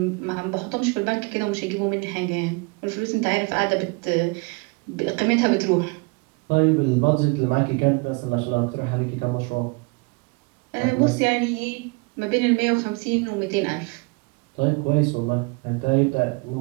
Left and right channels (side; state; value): left; quieter; 29.0 dB